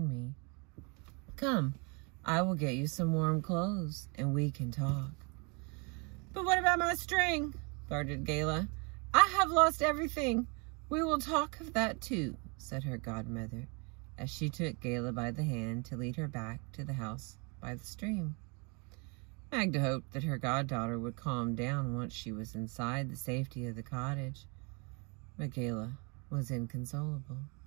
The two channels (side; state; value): left; quieter; 32.3 dB